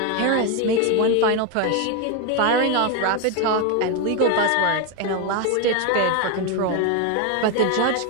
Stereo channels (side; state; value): both; different; correlation 0.02